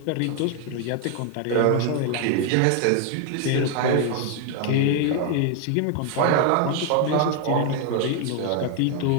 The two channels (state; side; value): different; both; correlation 0.01